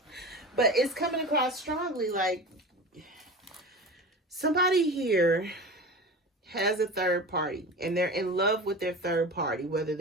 But it's coming across strongly, like somebody here has a third party and they're in love with their third party, whether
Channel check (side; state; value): both; normal; correlation 0.31